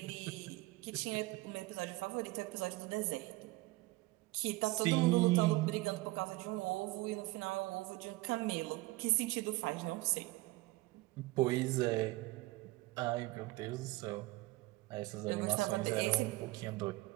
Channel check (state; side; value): quieter; left; 21.3 dB